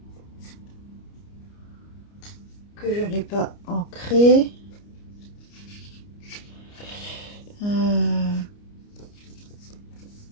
Que je n'ai pas ancré.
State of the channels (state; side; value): late; right; 29 ms